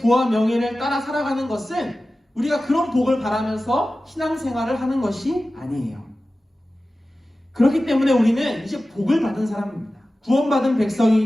명예를 따라 살아가는 것은 우리가 그런 복을 바라면서 신앙생활을 하는 것이 아니에요. 그렇기 때문에 우리는 이제 복을 받은 사람입니다. 구원받은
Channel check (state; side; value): normal; both; correlation 0.95